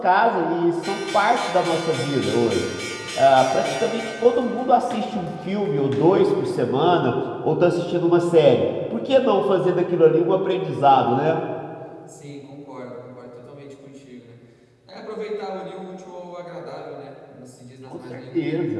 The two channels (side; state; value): both; identical; correlation 1.00